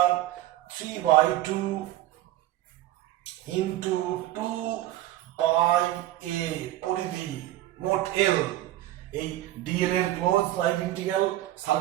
3/2 into 2 pi a পরিধি মোট l। এই dl এর ক্লোজ লাইন ইন্টিগ্রাল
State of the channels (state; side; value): quieter; left; 14.8 dB